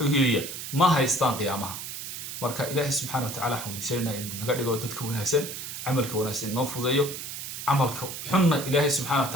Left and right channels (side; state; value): right; noise; hiss, 8 dB below the sound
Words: hiriya ma haystaan qiyaamaha marka ilaahay subhanahu wa ta'ala xamdiisayna inuu naga dhigo dadka wanaagsan amalka wanaagsan noo fudeeyo amalka xunna ilaahay subhanahu wa